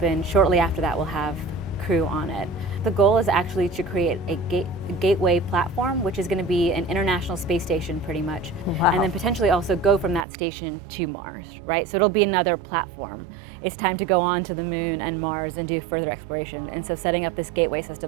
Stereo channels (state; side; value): drops out; left; at 10.2 s